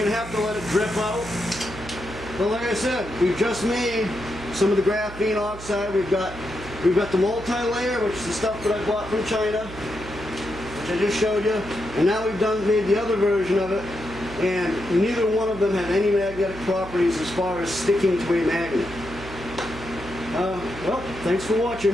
to have to let it drip out. But like I said, we've just made some of the graphene oxide. We've got the multi-layer, which is the stuff that I bought from China, which I just showed you. And now we've made the other version of it. And neither one of them have any magnetic properties as far as sticking to a magnet. Well, thanks for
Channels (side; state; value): right; noise; hum, 14 dB below the sound